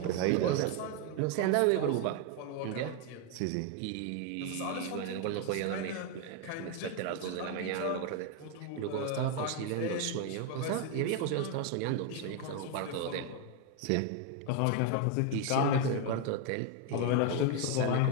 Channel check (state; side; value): different; both; correlation 0.01